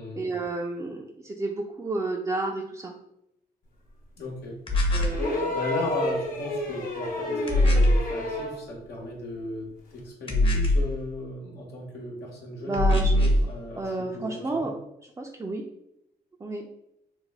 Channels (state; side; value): normal; both; correlation 0.66